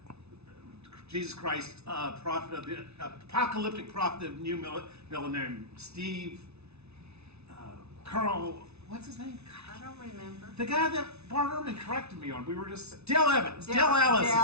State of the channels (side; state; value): left; late; 0.80 ms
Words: Jesus Christ, prophet of the apocalyptic prophet of the new millennium? Steve Carl. What's his name? I don't remember. The guy that Bart Ehrman corrected me on. We were just Dale Evans. Dale Allison.